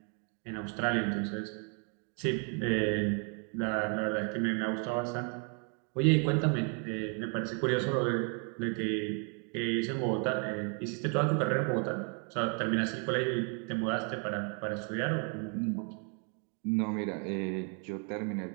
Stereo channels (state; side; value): quieter; left; 39.5 dB